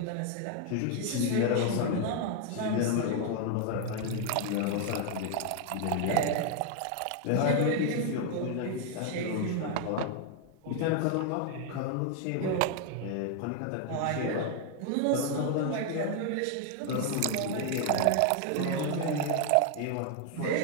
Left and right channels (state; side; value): different; both; correlation 0.00